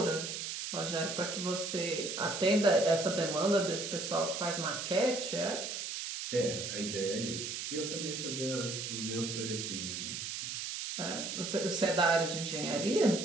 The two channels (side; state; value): right; noise; hiss, 5 dB below the sound